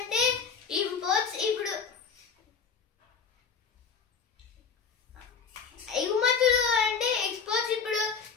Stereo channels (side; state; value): right; quieter; 6.0 dB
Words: ఇంపోర్ట్స్. ఇప్పుడు ఎగుమతులు అంటే ఎక్స్పోర్ట్స్. ఇప్పుడు